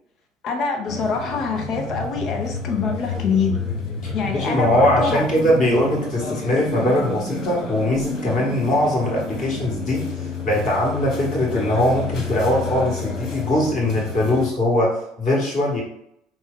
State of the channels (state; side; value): normal; both; correlation 0.58